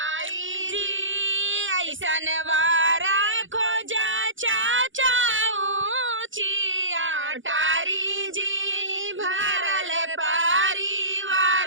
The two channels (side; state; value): left; late; 0.57 ms